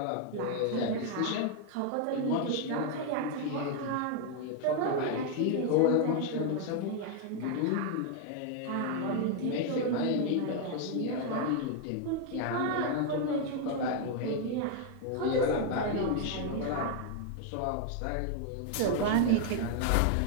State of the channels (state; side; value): different; both; correlation 0.00